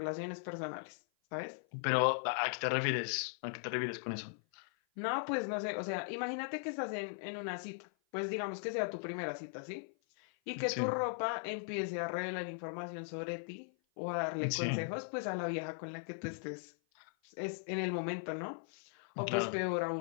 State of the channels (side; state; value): right; silent; 52 dB below the other